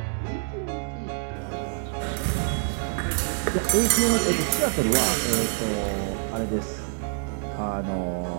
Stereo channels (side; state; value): left; silent; 61 dB below the other